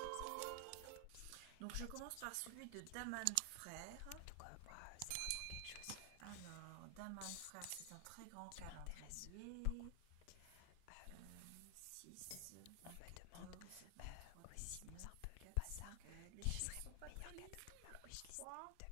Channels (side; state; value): both; different; correlation 0.00